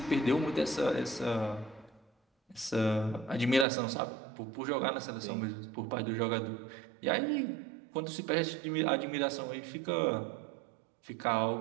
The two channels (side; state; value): left; drops out; at 3.7 s